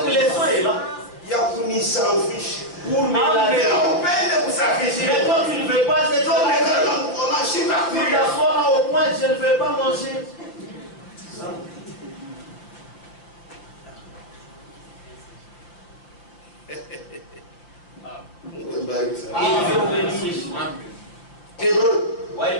Les sang est là. Il y a pour m'y s'en fiche. Pour me laver. On peine pour s'afficher. Mais toi, tu ne veux pas être là. Tu t'assois au point, je ne veux pas manger. Hébreux,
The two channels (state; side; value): late; right; 5.7 ms